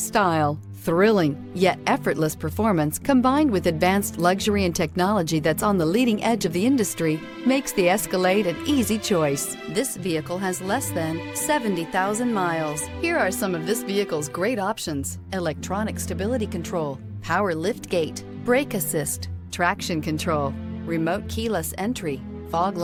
Thrilling, yet effortless performance combined with advanced luxury and technology that's on the leading edge of the industry makes the Escalade an easy choice. This vehicle has less than 70,000 miles. Here are some of this vehicle's great options: electronic stability control, power liftgate, brake assist, traction control, remote keyless entry, fog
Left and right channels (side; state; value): both; identical; correlation 1.00